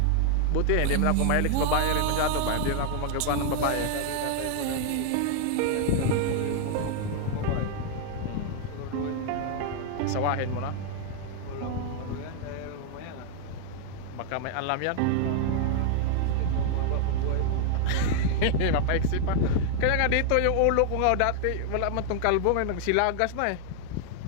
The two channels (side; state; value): both; different; correlation 0.00